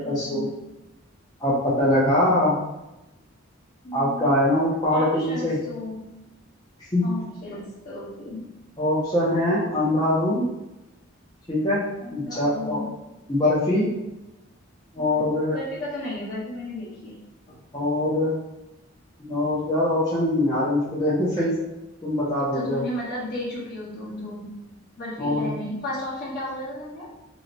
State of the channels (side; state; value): both; normal; correlation 0.26